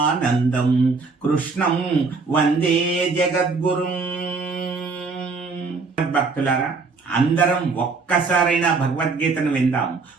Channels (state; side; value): quieter; left; 4.3 dB